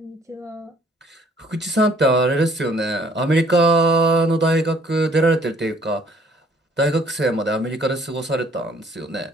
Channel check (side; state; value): both; normal; correlation 0.60